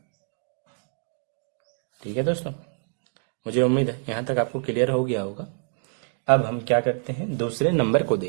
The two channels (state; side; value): silent; left; 61 dB below the other